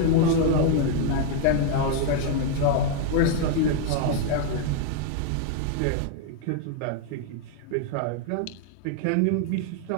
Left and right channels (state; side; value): different; both; correlation 0.00